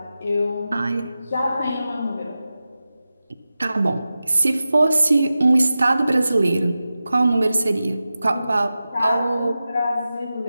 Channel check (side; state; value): both; inverted; correlation -0.94